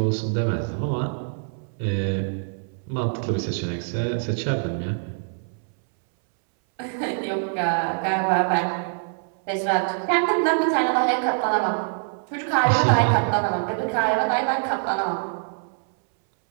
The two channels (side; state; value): left; silent; 62 dB below the other